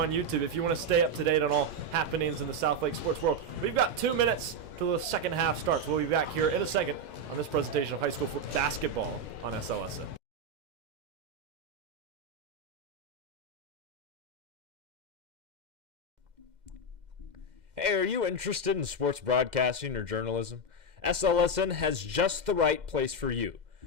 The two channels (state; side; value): late; left; 2.1 ms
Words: YouTube if you want to stay up to date on all happenings in the Southlake sports world. We've got 2 minutes till the second half starts. We'll be back here in a second on this presentation of high school basketball on SLSN. Hey, are you interested in sports broadcasting or journalism? SLSN has just the right place for you.